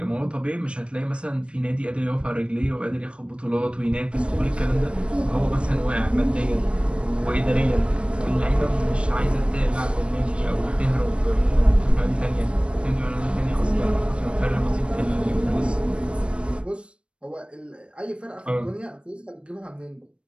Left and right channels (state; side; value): late; left; 0.058 ms